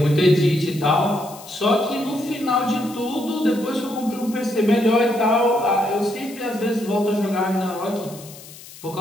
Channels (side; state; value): left; noise; hiss, 18 dB below the sound